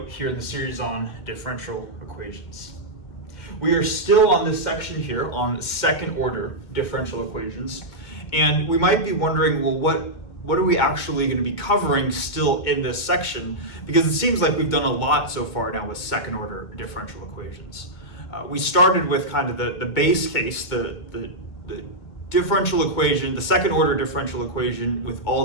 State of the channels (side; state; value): right; late; 2.2 ms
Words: here in the series on differential equations. We are still on this section here on second order differential equations, and we might be wondering, well, what are we actually going to be covering still in this section? Because it seems like we've done a lot so far now with second order differential equations. We started with kind of the base case, the differential equation, the second order differential equation with